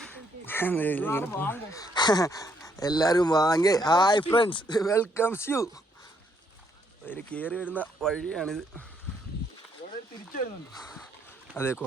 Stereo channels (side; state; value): both; normal; correlation 0.72